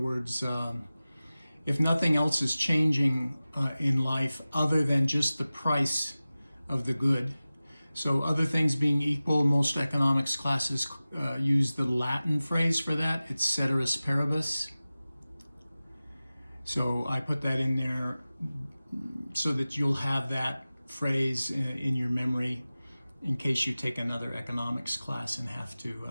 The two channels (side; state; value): both; inverted; correlation -0.97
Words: if nothing else is changing in life other than just the price of the good, so other things being equal, most economics classes use the Latin phrase for that. It's ceteris paribus. So I put that in there so that you'll have that phrase in your memory in case you take another economics class and have to